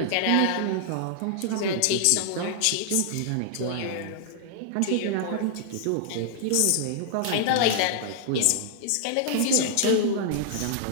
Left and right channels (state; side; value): different; both; correlation -0.01